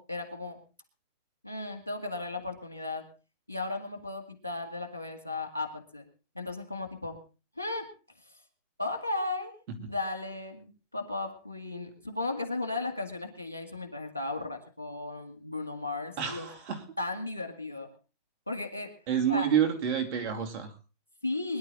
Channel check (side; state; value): both; inverted; correlation -0.41